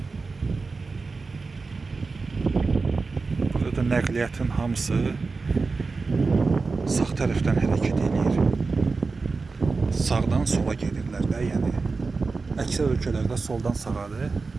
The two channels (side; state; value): left; quieter; 4.1 dB